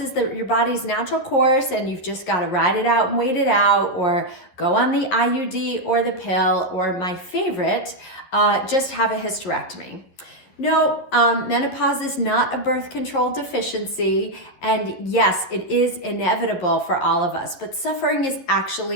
your body's natural course, and you've just got to ride it out and wait it out, or go on the IUD or the pill, or my favorite, just have a hysterectomy. No, menopause is not a birth control deficiency, and yes, it is inevitable for all of us, but suffering is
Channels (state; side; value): late; right; 11 ms